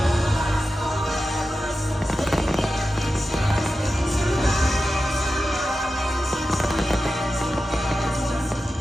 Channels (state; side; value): normal; both; correlation 0.92